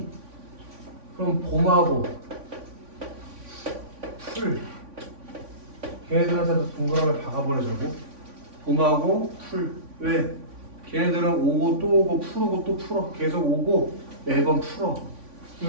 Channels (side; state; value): left; late; 3.5 ms